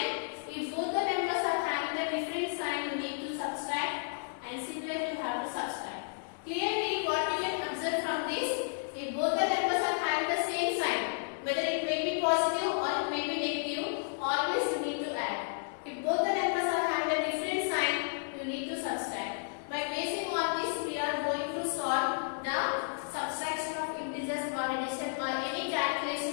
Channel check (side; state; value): right; silent; digital silence